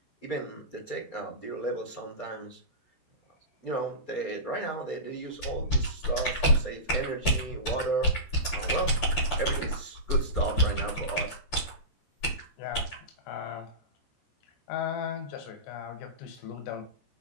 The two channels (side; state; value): right; late; 14 ms